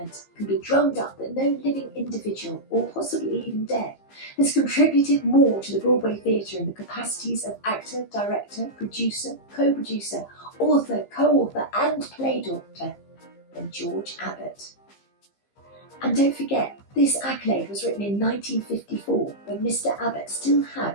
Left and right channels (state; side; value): late; right; 15 ms